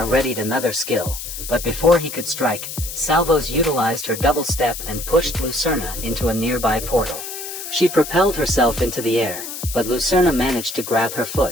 readied another skill, but before he could strike, Salvos utilized her double step and pushed Lucerna into a nearby portal. She propelled herself into the air, but Lucerna managed to grab her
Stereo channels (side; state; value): left; noise; hiss, 8 dB below the sound